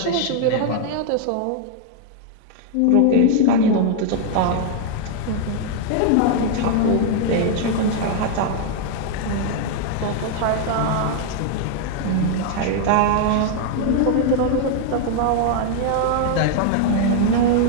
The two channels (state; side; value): different; both; correlation 0.00